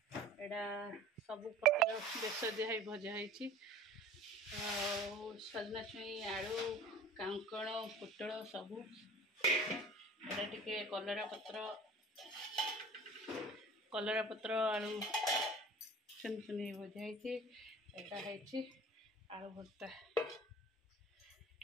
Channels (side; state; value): both; normal; correlation 0.44